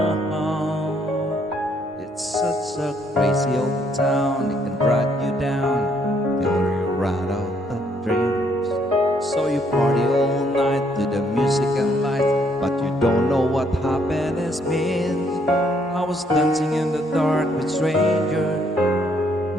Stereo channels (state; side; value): normal; both; correlation 0.69